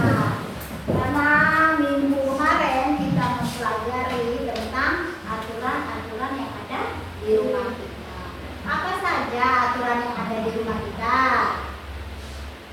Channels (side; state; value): both; identical; correlation 1.00